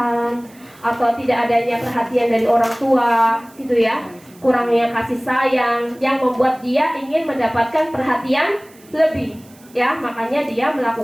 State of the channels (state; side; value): noise; right; hiss, 27 dB below the sound